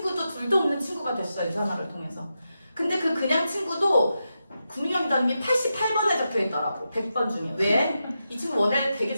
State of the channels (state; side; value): inverted; both; correlation -0.88